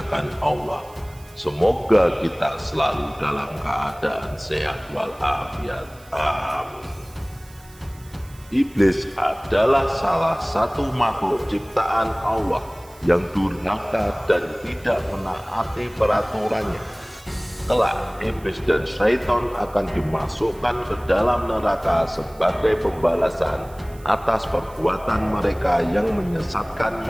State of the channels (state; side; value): noise; right; hiss, 25 dB below the sound